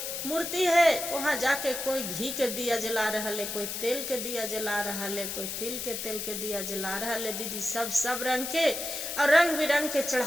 मूर्ति है, वहाँ जाके कोई घी के दिया जला रहा है, कोई तेल के दिया जला रहा है, कोई तिल के तेल के दिया जला रहा है दीदी, सब रंग के और रंग बिरंग के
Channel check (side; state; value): left; noise; hiss, 4 dB below the sound